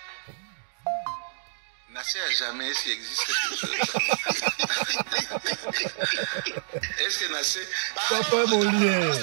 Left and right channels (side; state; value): left; silent; digital silence